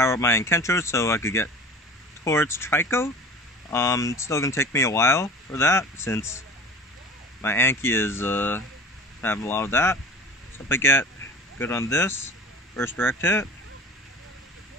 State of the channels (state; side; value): normal; both; correlation 0.38